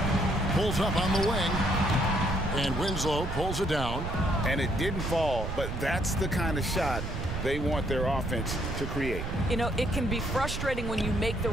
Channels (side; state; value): right; noise; rumble, 5 dB below the sound